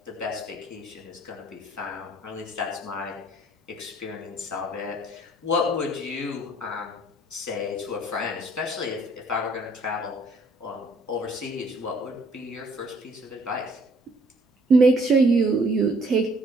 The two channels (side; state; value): both; normal; correlation 0.60